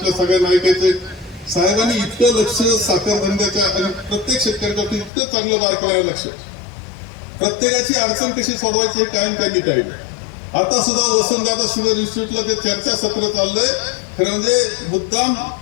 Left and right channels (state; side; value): drops out; right; at 5.1 s